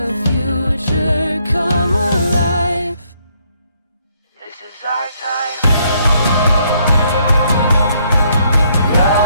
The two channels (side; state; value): both; inverted; correlation -0.70